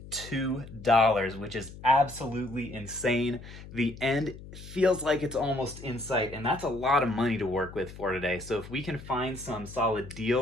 which is absolutely insane. The end feels like it's almost in sight, and that's a lot of money to work with for today. So if we can find some solid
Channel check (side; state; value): left; noise; hum, 15 dB below the sound